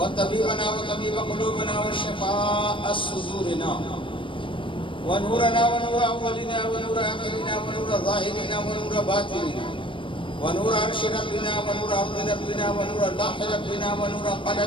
وطبيب قلوبنا وشفاء صدورنا ونورنا ونور أولنا ونور آخرنا ونور ظاهرنا ونور باطننا ونور عرش ربنا ونور أرض ربنا ونور لوح ربنا ونور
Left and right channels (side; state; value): right; late; 0.25 ms